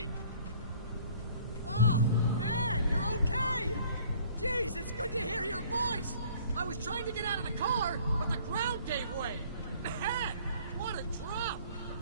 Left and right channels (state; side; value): inverted; both; correlation -0.54